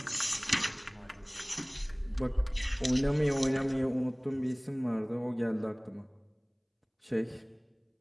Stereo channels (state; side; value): identical; both; correlation 1.00